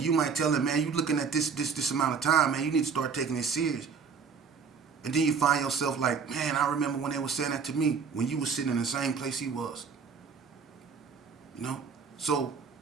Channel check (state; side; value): quieter; left; 5.8 dB